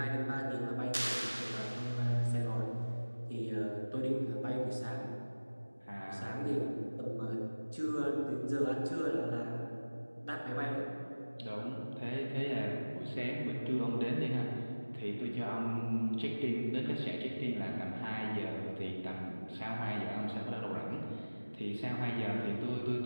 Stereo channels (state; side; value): inverted; both; correlation -1.00